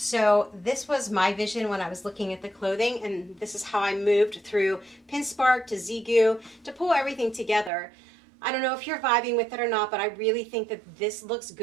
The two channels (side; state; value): left; drops out; at 7.7 s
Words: this was my vision when I was looking at the clothing, and this is how I moved through Pinkspark to Zeagoo to pull everything together. I don't know if you're vibing with it or not, but I really think that this looks